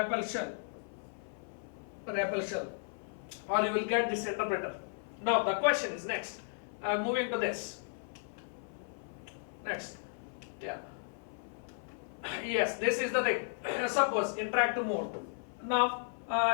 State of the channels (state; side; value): silent; right; 55 dB below the other